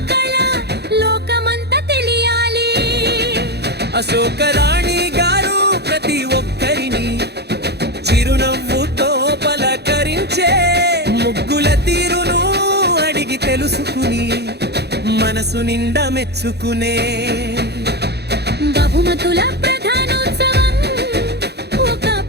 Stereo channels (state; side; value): late; left; 0.48 ms